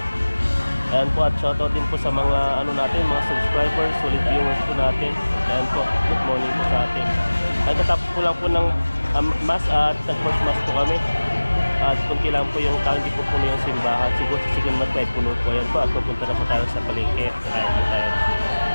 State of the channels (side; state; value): both; inverted; correlation -1.00